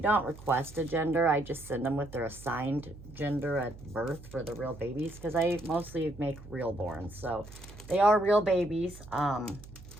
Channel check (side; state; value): right; noise; hum, 17 dB below the sound